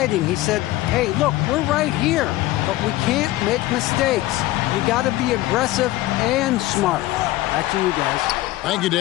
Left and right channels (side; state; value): right; quieter; 16.9 dB